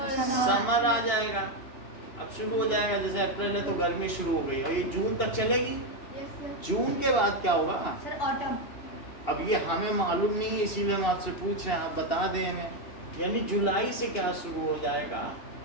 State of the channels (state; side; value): late; right; 2.9 ms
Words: आ जाएगा। अब शुरू हो जाएगा, जैसे अप्रैल है तो गर्मी शुरू हो गई, और ये जून तक चलेगी। Yes, sir. जून के बाद क्या होगा? Sir, autumn. अब ये हमें मालूम नहीं है, इसीलिए हम आपसे पूछ रहे हैं, आप बता दें हमें। यानी जुलाई से क्या शुरू हो जाएगा,